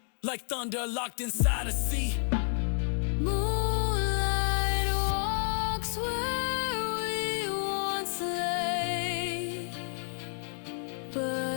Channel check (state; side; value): silent; right; digital silence